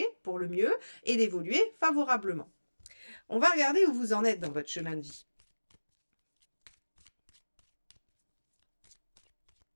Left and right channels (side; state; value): both; inverted; correlation -1.00